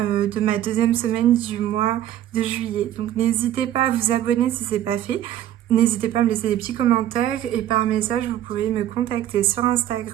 ma deuxième semaine du mois de juillet. Donc n'hésitez pas à vous abonner si ce n'est pas fait. N'hésitez pas à me laisser des petits commentaires et par message vous pouvez me contacter sur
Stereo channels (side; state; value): left; quieter; 12.0 dB